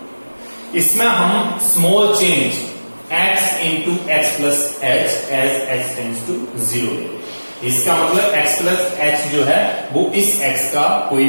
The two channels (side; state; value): both; inverted; correlation -1.00